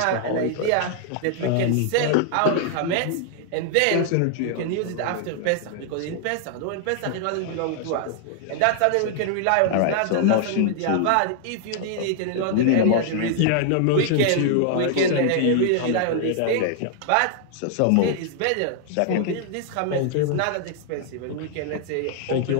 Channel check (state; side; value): different; both; correlation 0.00